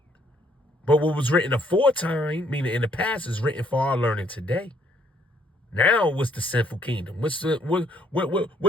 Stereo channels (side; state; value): both; normal; correlation 0.66